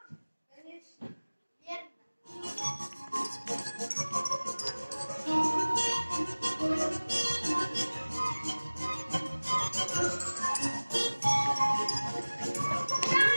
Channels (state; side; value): inverted; both; correlation -1.00